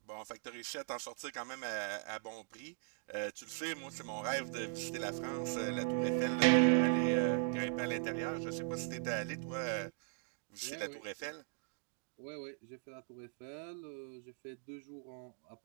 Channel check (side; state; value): left; silent; 51 dB below the other